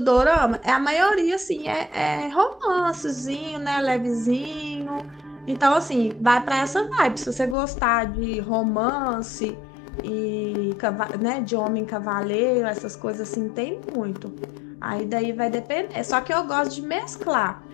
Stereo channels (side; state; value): right; drops out; at 7.6 s